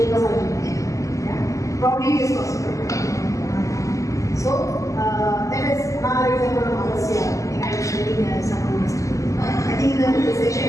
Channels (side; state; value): right; late; 0.16 ms